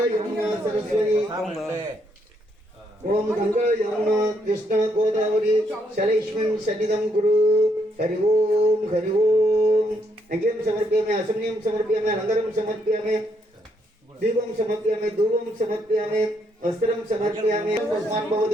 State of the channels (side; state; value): both; normal; correlation 0.74